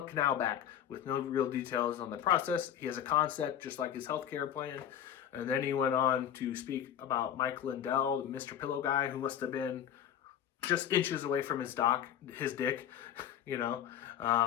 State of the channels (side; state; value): right; quieter; 9.9 dB